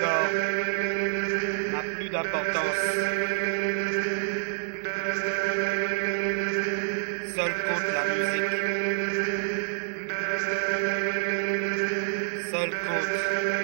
n'a plus d'importance. Seul compte la musique. Seul compte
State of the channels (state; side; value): silent; left; 60 dB below the other